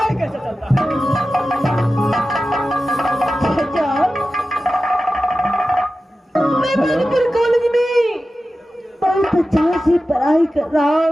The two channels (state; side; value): normal; both; correlation 0.94